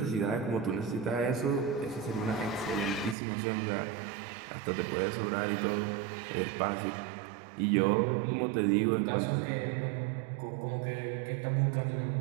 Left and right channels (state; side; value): drops out; left; at 3.2 s